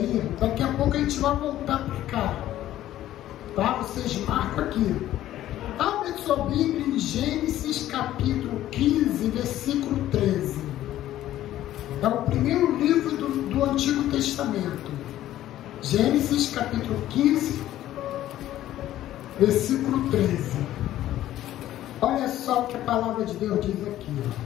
daqui a pouco a gente vai voltar para cá. Tá? Vocês marcam aqui. Abre sua Bíblia em Gênesis capítulo 15, versículo 13. É o primeiro livro do Antigo Testamento. Gênesis capítulo 15, versículo 13. Olha só o que a palavra de Deus diz aqui.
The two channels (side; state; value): right; quieter; 13.4 dB